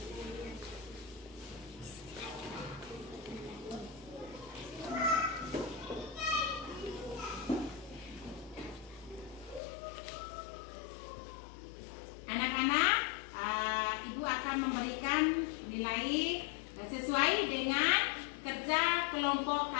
Anak-anak, Ibu akan memberikan nilai sesuai dengan kerja kelompok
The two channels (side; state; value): right; drops out; at 9.6 s